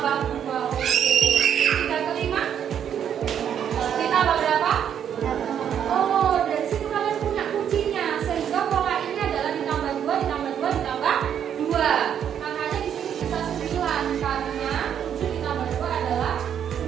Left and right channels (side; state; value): left; quieter; 9.0 dB